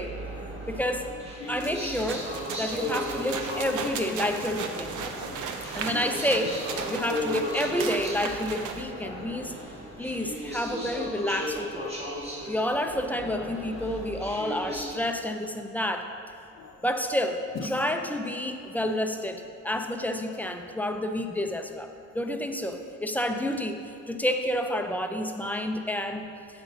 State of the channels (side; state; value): both; normal; correlation 0.54